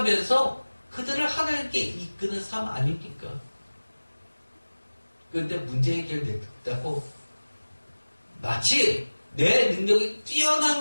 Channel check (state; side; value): inverted; both; correlation -1.00